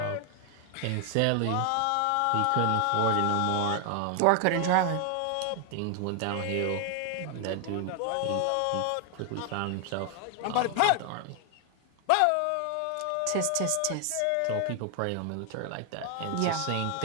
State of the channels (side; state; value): both; different; correlation 0.01